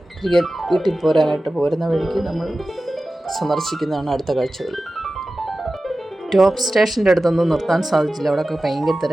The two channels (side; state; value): both; normal; correlation 0.95